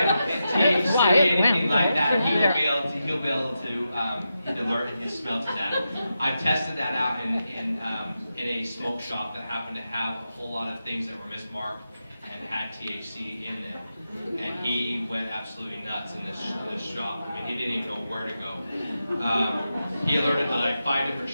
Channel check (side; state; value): both; inverted; correlation -0.88